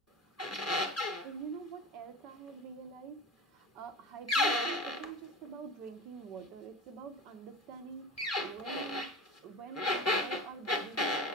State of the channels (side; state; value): both; normal; correlation 0.30